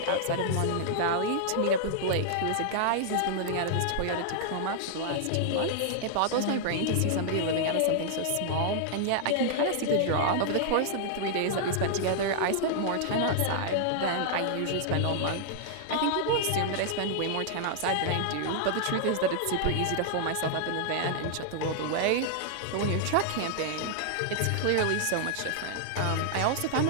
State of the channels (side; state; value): both; different; correlation -0.01